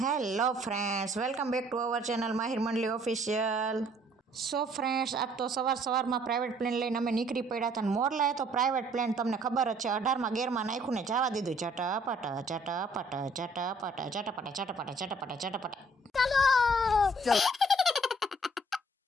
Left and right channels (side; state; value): both; normal; correlation 0.60